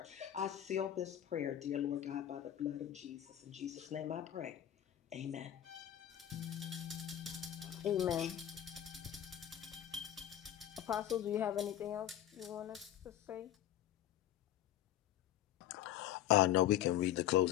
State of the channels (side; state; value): right; quieter; 11.7 dB